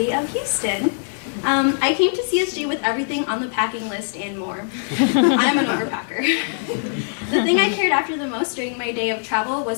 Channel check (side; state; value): right; silent; digital silence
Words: of Houston. I came to CSG with everything on the packing list and more. I'm an overpacker. The thing I cared after the most during my day of travel